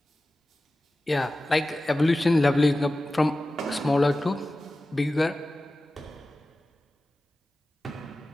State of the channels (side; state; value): both; normal; correlation 0.95